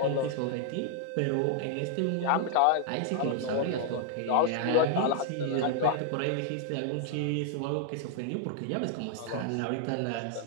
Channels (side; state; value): both; different; correlation 0.00